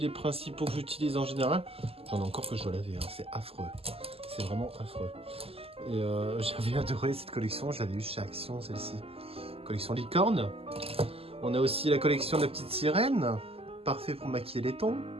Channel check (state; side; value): late; left; 0.28 ms